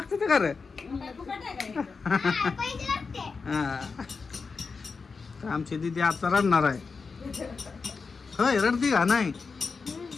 ते खरं हा आमची दीदी आता रडणार आहे. होय रडती का नाही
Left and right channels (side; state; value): right; quieter; 4.8 dB